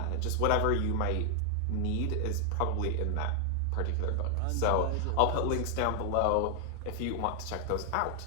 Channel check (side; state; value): both; different; correlation 0.00